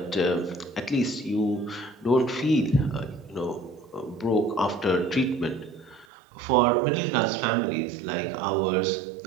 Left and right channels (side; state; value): left; drops out; at 6.1 s